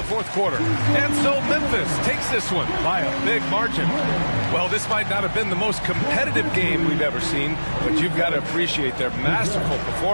the fourth quarter. And so Memphis takes this one by a big margin. Well, this might not have been the most competitive game we've ever seen, but you've got to appreciate their masterful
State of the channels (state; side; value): inverted; both; correlation -1.00